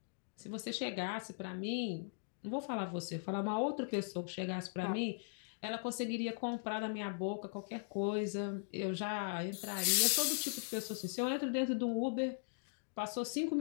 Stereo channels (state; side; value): silent; right; digital silence